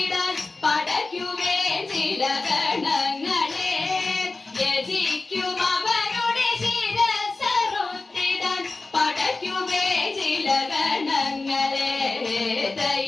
പടയ്ക്കുമേ ചില ഗണങ്ങളെ യജിക്കും അവരുടെ ശിരസ്സറുത്തിടാൻ പടയ്ക്കുമേ ചില ഗണങ്ങളെ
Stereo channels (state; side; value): quieter; right; 3.5 dB